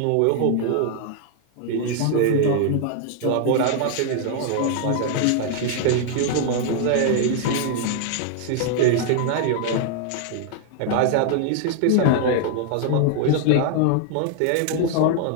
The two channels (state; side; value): different; both; correlation 0.00